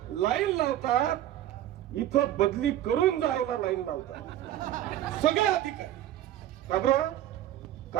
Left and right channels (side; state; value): left; quieter; 12.7 dB